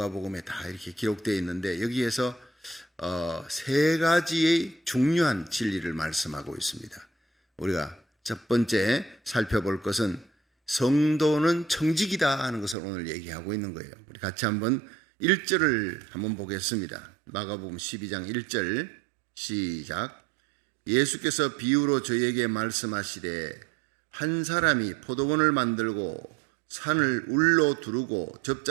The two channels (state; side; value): drops out; left; at 12.8 s